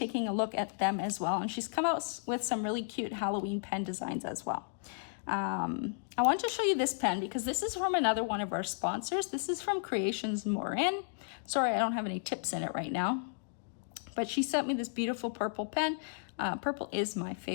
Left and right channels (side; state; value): right; silent; digital silence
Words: a look at them as well. And she's come out with some really cute Halloween pen designs as well. I want to show you this pen because this is from another one of our sponsors. This is from Creations Morin. Sorry, I don't have any tips in it right now. But she sent me this beautiful purple pen. Purple is my